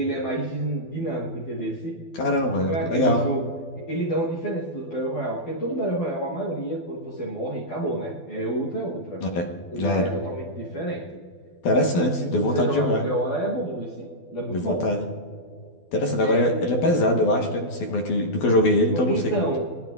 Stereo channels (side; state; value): right; late; 12 ms